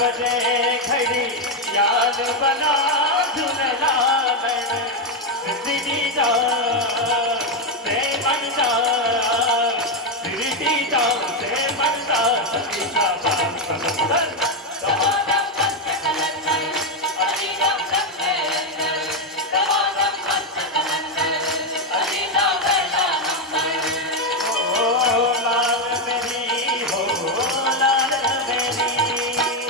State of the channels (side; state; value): both; normal; correlation 0.05